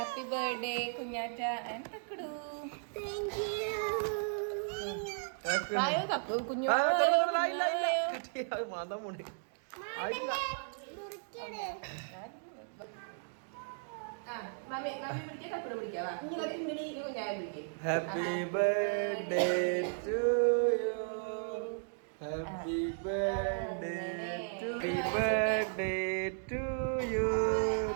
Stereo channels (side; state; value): left; silent; digital silence